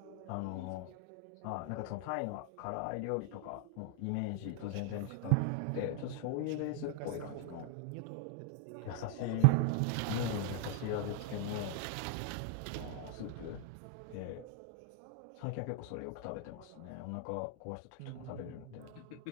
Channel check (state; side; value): different; both; correlation 0.00